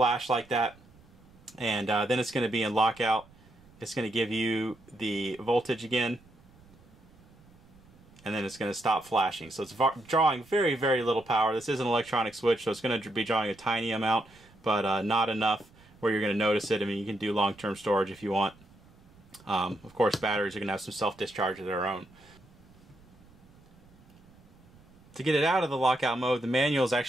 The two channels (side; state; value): right; noise; rumble, 26 dB below the sound